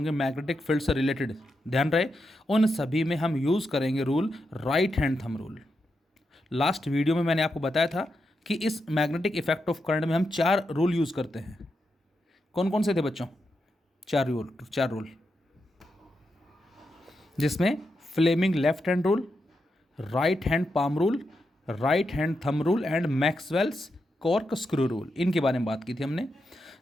मैग्नेटिक फील्ड से रिलेटेड, ध्यान रहे, उन सभी में हम यूज़ करेंगे rule right hand thumb rule. Last video में मैंने आपको बताया था कि इस मैग्नेटिक इफेक्ट ऑफ करंट में हम 4 रूल यूज़ करते हैं। कौन कौन से थे बच्चों? 4 रूल, जिसमें Fleming left hand rule, right hand palm rule, right hand thumb rule and Maxwell's cork screw rule, इनके बारे में बात की थी हमने।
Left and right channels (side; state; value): both; normal; correlation 0.86